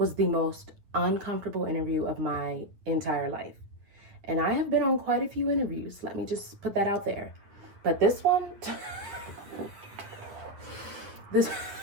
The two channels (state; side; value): late; left; 9.5 ms